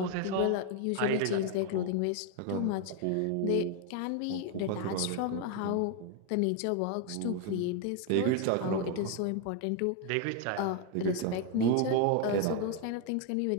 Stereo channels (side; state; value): both; different; correlation 0.01